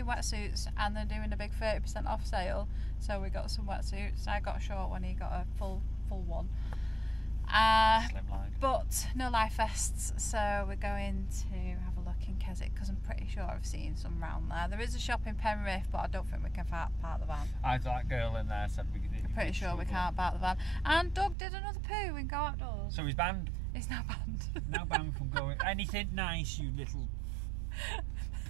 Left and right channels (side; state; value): left; drops out; at 21.4 s